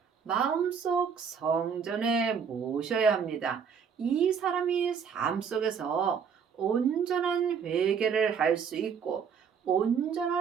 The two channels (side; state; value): left; quieter; 6.8 dB